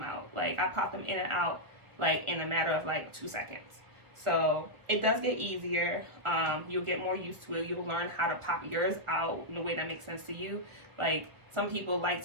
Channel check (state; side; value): late; left; 1.6 ms